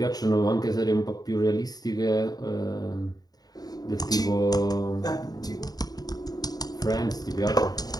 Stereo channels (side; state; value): right; late; 0.19 ms